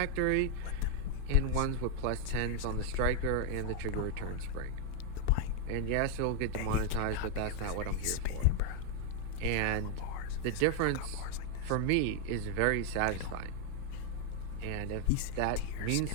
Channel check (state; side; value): different; both; correlation 0.00